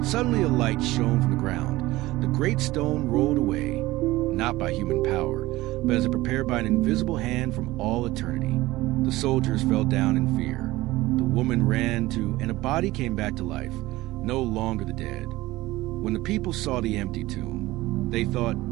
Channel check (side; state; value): left; quieter; 18.4 dB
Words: suddenly a light shone from the ground. The great stone rolled away, not by human power, but as if prepared by an invisible hand from all eternity. The soldiers fell down in fear. The woman ran to, and a body came back to life, no longer the dead. When the people saw the empty tomb, they thought